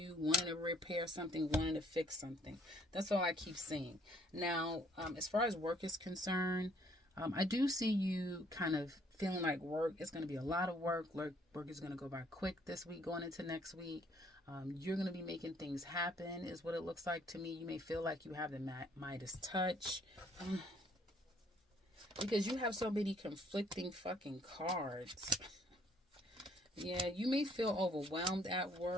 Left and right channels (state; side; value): normal; both; correlation 0.63